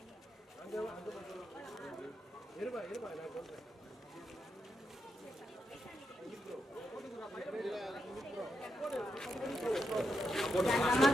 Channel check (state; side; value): normal; both; correlation 0.84